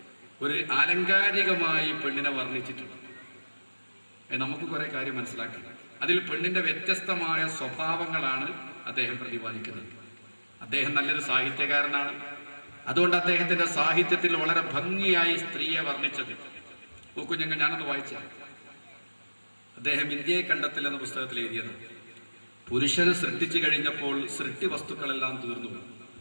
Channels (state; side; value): inverted; both; correlation -1.00